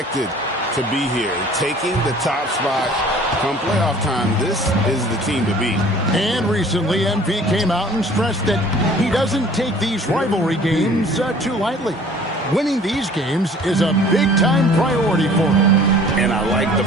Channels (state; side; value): normal; both; correlation 0.50